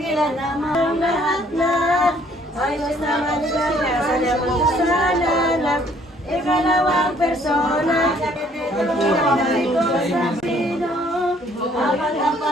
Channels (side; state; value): both; normal; correlation 0.61